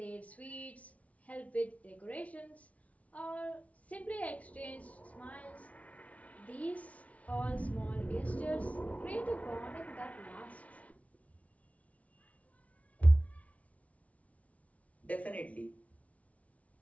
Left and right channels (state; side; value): late; right; 0.067 ms